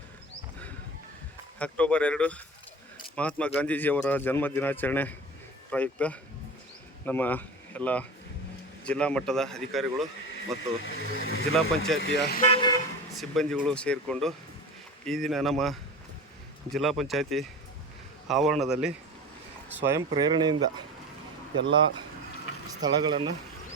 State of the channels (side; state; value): both; normal; correlation 0.32